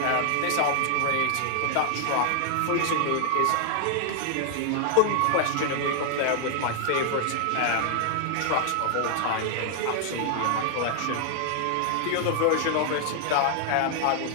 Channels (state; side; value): different; both; correlation 0.00